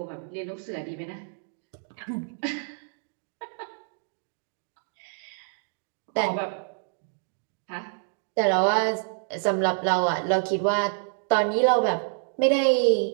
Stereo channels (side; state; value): left; silent; digital silence